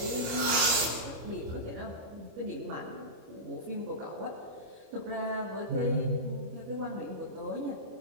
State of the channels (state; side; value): late; left; 25 ms